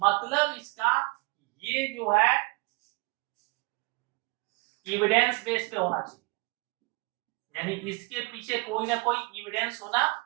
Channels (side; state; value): left; quieter; 26.0 dB